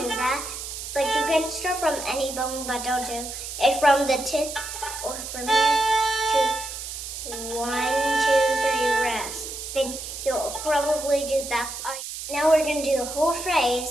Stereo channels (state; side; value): noise; right; hiss, 8 dB below the sound